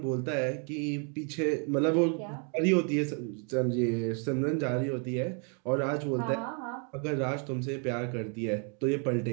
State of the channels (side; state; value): left; quieter; 39.7 dB